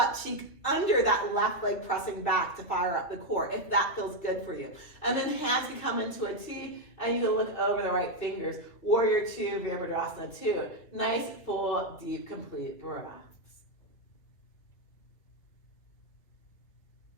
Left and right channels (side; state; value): right; late; 3.0 ms